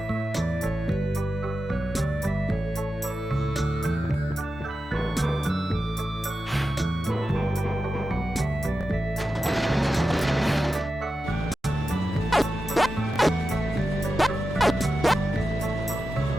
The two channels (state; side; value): normal; both; correlation 0.91